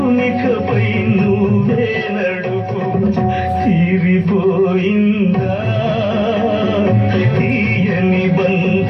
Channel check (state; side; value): identical; both; correlation 1.00